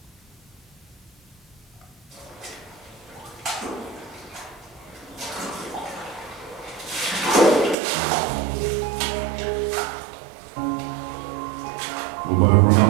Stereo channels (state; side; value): drops out; left; at 7.8 s